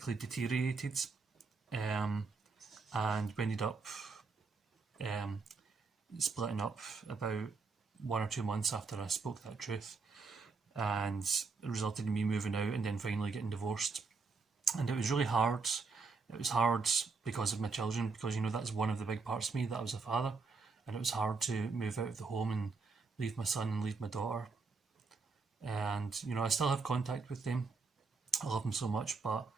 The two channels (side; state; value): left; quieter; 4.5 dB